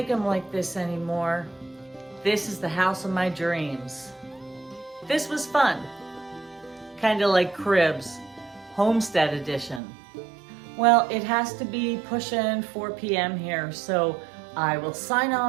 them like this anymore. This is the house of my dreams. This was fun. Kind of like Cribs, Homestead edition. Well, it has to be pushing 4 p.m. here, so I will sign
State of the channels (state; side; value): drops out; left; at 9.8 s